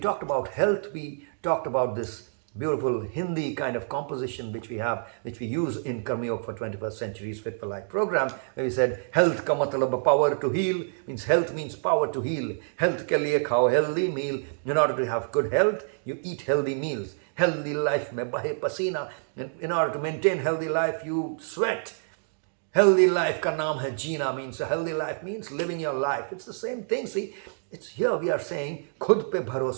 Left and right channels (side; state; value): left; silent; digital silence